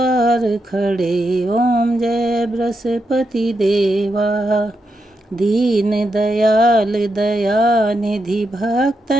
खड़े। ओम जय बृहस्पति देवा। दीन दयाल दयानिधि,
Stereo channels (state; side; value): normal; both; correlation 0.84